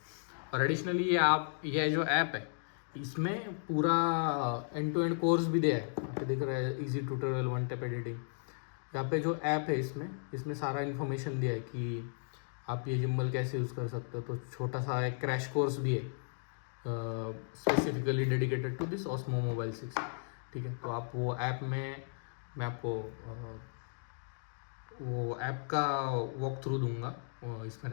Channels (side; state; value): right; silent; digital silence